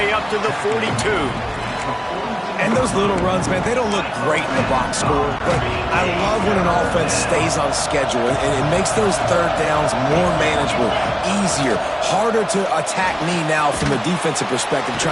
up to the 42. And those little runs, man, they don't look great in the box score, but I love when an offense stays on schedule, and it makes those third downs more manageable, easier, harder to attack me now from a defensive perspective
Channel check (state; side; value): identical; both; correlation 1.00